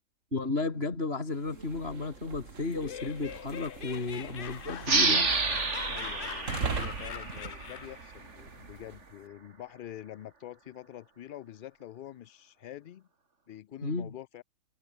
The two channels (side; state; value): left; late; 3.5 ms